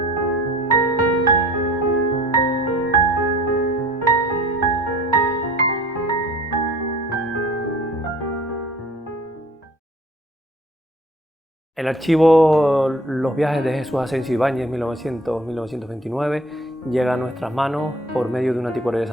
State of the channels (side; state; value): both; normal; correlation 0.50